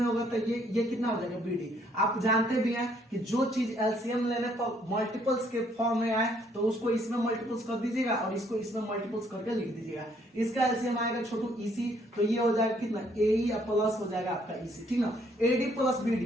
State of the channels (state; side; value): normal; both; correlation 0.67